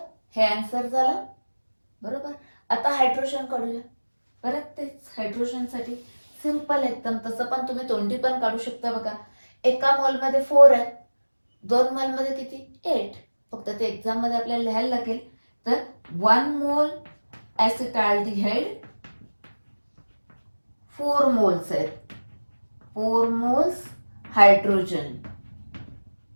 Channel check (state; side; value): inverted; both; correlation -1.00